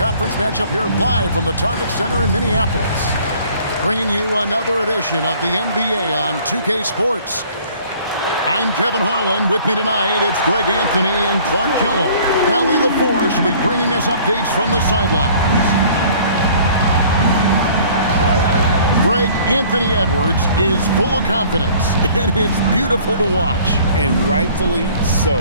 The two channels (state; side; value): inverted; both; correlation -0.53